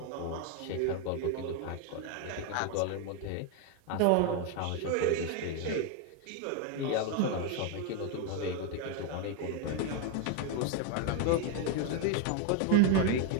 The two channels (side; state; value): both; different; correlation 0.01